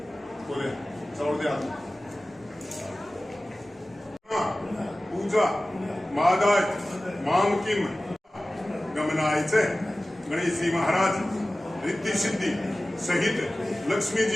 बोले चौड़ दे पूजा मादाय मामकिम गमनायचे गणेशजी महाराज रिद्धी सिद्धी सहित लक्ष्मी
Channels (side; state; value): both; normal; correlation 0.97